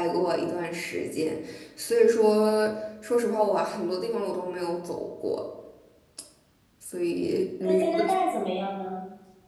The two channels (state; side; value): identical; both; correlation 1.00